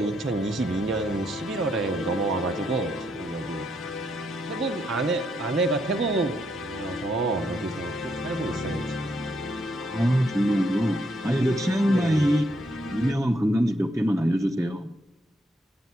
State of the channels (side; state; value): both; normal; correlation 0.76